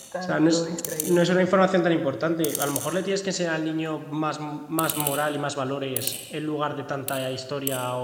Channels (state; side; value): identical; both; correlation 1.00